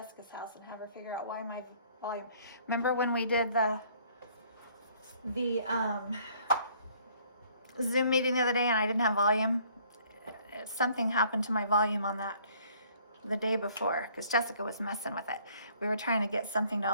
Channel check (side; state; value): both; inverted; correlation -0.60